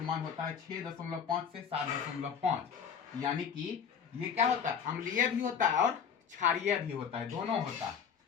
मान होता है 6.5 से 7.5, यानी कि ये क्या होता है? अम्लीय भी होता है और क्षारीय भी होता है, दोनों होता है।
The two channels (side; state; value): right; quieter; 7.2 dB